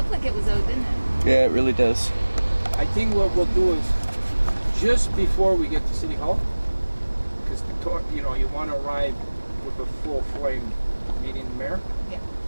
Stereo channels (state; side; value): inverted; both; correlation -1.00